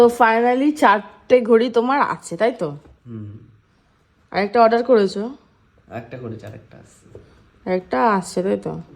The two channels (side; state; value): both; identical; correlation 1.00